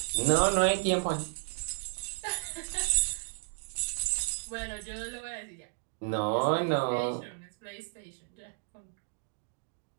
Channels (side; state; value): left; silent; digital silence